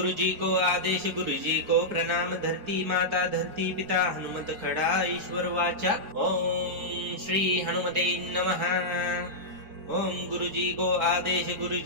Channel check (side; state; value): left; late; 4.5 ms